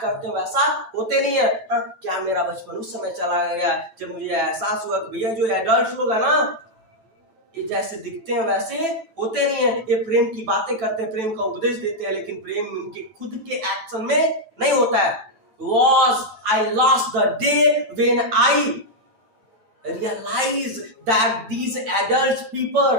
करते हैं वैसा होते नहीं है। हाँ, क्या मेरा बचपन उस समय चला गया जब मुझे एहसास हुआ कि भैया जो एडल्ट लोग है ना, ये जैसे दिखते हैं वैसे होते नहीं है, ये प्रेम की बातें करते हैं, प्रेम का उपदेश देते हैं, लेकिन प्रेम इनके खुद के एक्शन में नहीं होता है। Was I lost the day when I realize that these adult people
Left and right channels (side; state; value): left; late; 9.1 ms